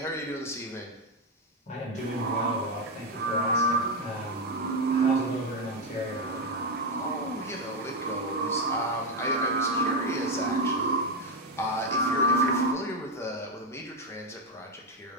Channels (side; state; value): both; normal; correlation 0.07